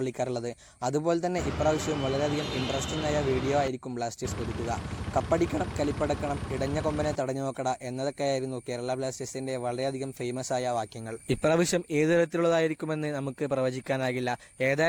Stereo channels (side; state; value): both; identical; correlation 1.00